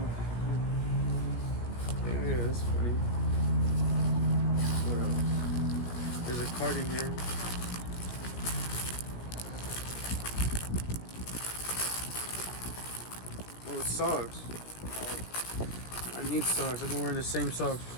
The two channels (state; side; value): late; right; 17 ms